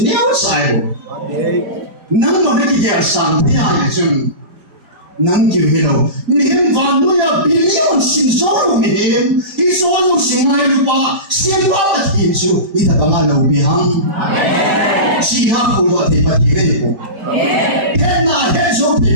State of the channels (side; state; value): left; late; 4.7 ms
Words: ya usai nang mana kita sang tiada jum nang kihilo mihim vanu ya bilion sin solo mihim isolo singai lupa siapa pati itu kita pengalau bihang siapa pula pati itu kena hejo